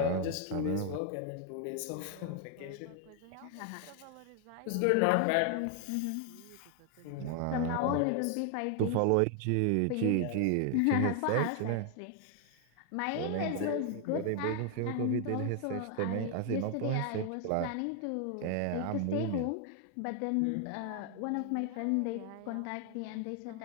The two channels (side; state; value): both; different; correlation 0.00